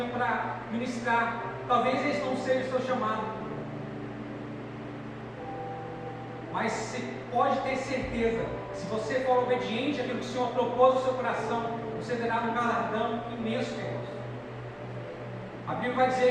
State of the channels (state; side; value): identical; both; correlation 1.00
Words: para ministrar. Talvez esse não seja o seu chamado, mas você pode ter certeza, se você for obediente àquilo que o Senhor propôs no seu coração, você terá um galardão imenso, queridos. A Bíblia vai